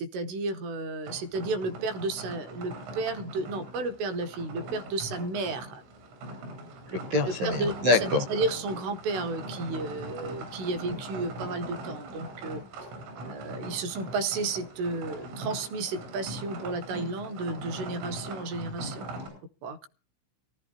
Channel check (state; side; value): late; left; 16 ms